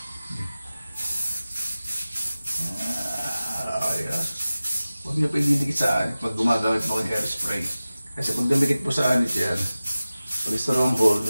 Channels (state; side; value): inverted; both; correlation -0.97